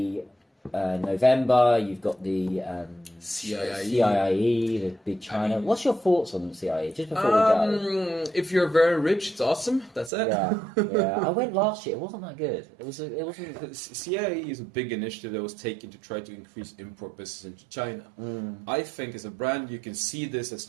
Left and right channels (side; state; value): left; drops out; at 10.1 s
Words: November, you've got the CIIE, the big China. What's your thoughts on the CIIE, just before we go? If you're very rich, it's awesome. That's it. Yeah. I went last year. It wasn't that good. It wasn't. CIIE is a big initiative that was taken to try to increase import business into China. I think as a brand, you can see this as